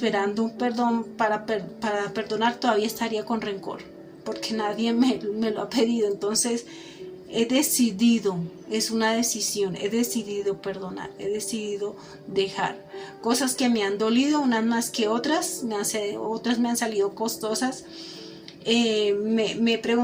un perdón para perdonar, todavía estaría con rencor, porque nadie me lo ha pedido. Entonces he decidido, es una decisión, he decidido perdonar, he decidido dejar cosas que me han dolido, unas más que otras, otras me han salido costosas. Me he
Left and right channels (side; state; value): both; identical; correlation 1.00